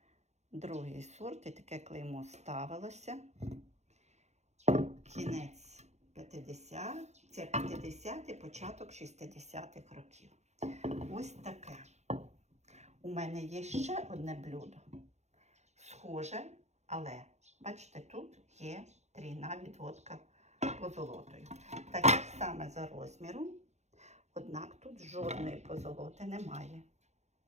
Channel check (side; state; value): left; late; 0.33 ms